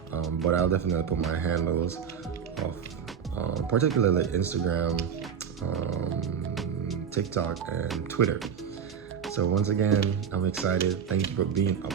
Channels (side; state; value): left; quieter; 7.4 dB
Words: But I'll definitely put my handles of particularly Instagram, TikTok, and Twitter. So once again, I'm excited. Thank you for being a